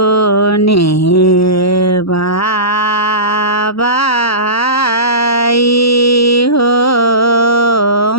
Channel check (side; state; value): right; late; 0.76 ms